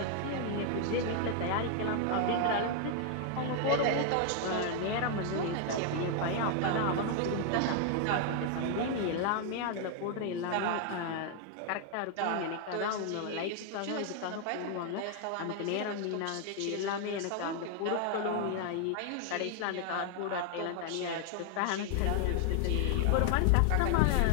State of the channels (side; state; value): both; different; correlation 0.00